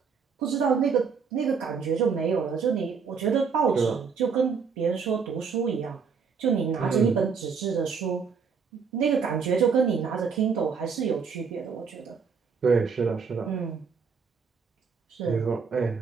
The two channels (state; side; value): quieter; left; 5.9 dB